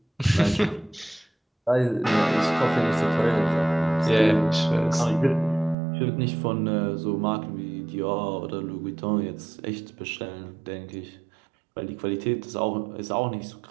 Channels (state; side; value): drops out; left; at 5.8 s